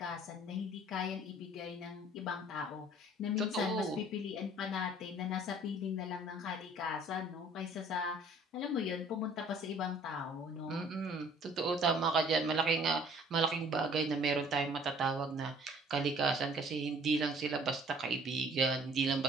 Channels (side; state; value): both; normal; correlation 0.54